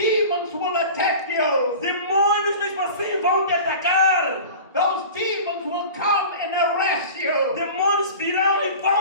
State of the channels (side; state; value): both; inverted; correlation -0.37